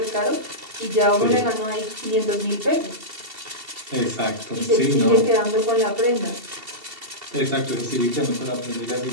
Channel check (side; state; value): left; late; 2.7 ms